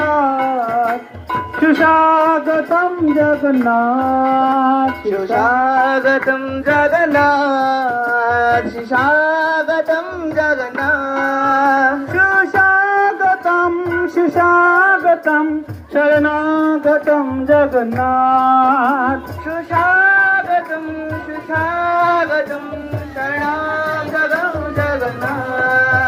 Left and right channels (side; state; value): both; identical; correlation 1.00